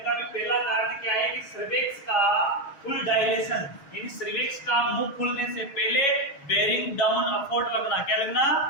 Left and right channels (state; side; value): late; right; 6.3 ms